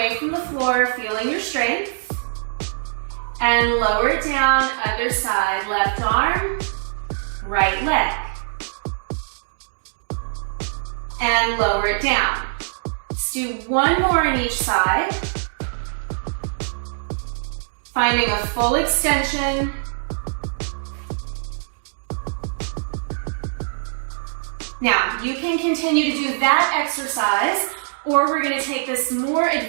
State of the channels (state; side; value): silent; left; digital silence